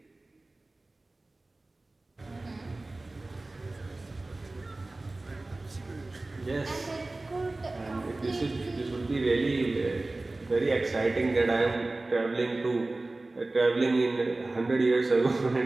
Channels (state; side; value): quieter; left; 3.0 dB